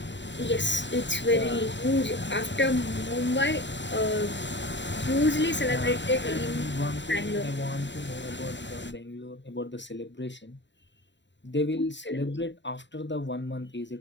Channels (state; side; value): late; right; 0.52 ms